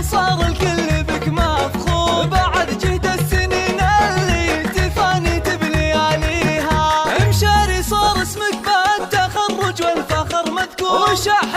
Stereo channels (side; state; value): both; identical; correlation 1.00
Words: الكل بك مفخور، بعد جهد السنين اللي تفاني بلياليها، امشاري صار اسمك بالتخرج والفخر مذكور،